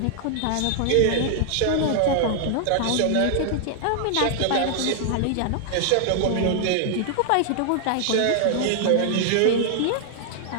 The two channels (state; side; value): different; both; correlation -0.01